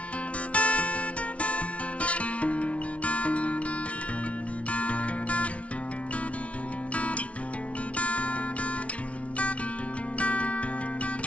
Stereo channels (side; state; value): right; late; 0.063 ms